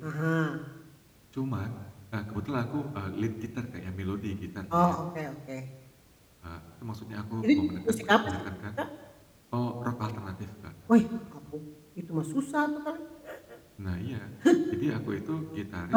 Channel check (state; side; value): identical; both; correlation 1.00